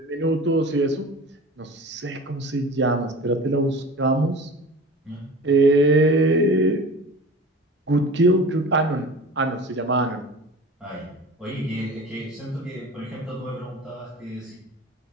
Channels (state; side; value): normal; both; correlation 0.37